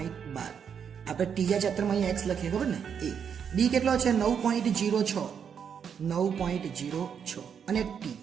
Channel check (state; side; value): quieter; left; 7.4 dB